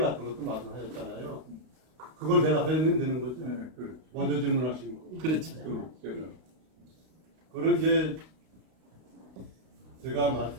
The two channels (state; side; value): late; left; 32 ms